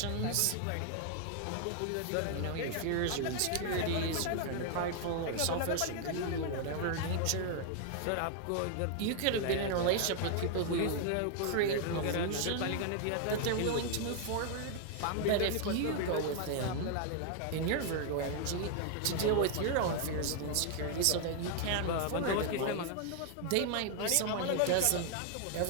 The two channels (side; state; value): both; different; correlation 0.00